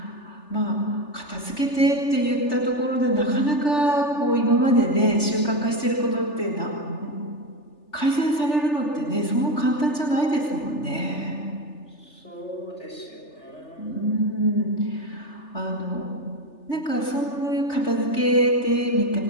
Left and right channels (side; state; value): right; late; 3.4 ms